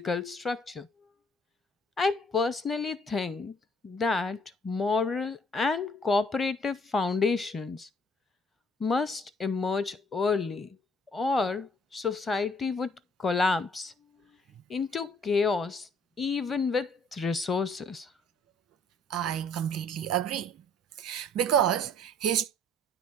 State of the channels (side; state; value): both; normal; correlation 0.61